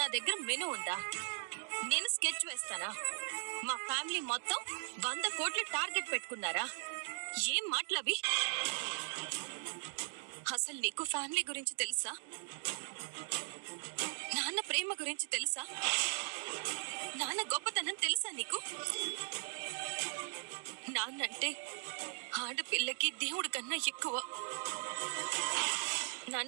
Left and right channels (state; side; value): silent; left; 52 dB below the other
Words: దగ్గర మెనూ ఉందా? నేను స్కెచ్ వేస్తానా? మా ఫ్యామిలీ మొత్తం 100 కోట్ల టార్గెట్ పెట్టుకున్నారా? ఏం మాటలవి? అసలు నీకు ఫ్యామిలీ గురించి తెలుసా? నాన్న ప్రేమ గురించి తెలుసా? నాన్న గొప్పతనం తెలుసా నీకు? నాన్నంటే ఆడపిల్లకి దేవుడి కన్నా ఎక్కువ.